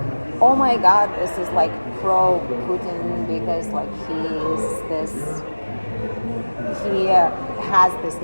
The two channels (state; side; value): inverted; both; correlation -1.00